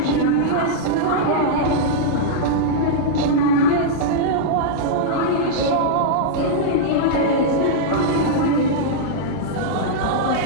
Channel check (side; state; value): both; different; correlation -0.03